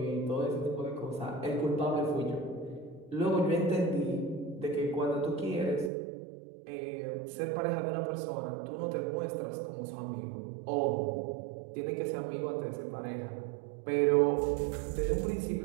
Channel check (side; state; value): left; drops out; at 5.9 s